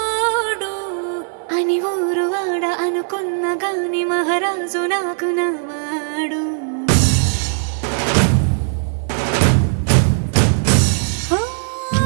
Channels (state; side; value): silent; left; digital silence